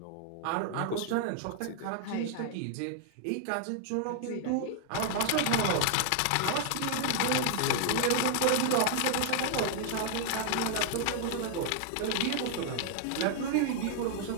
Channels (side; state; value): both; different; correlation 0.00